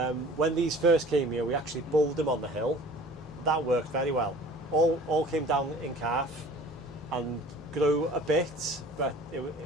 When these first came here, we actually bulled them on the hill. That worked very well. All came down in calf and grew a bit, but it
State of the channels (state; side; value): normal; both; correlation 0.46